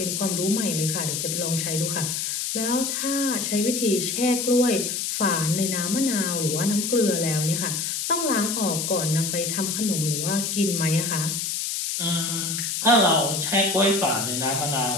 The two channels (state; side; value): noise; left; hiss, 1 dB below the sound